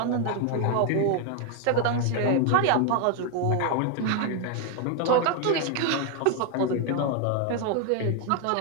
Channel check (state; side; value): different; both; correlation 0.01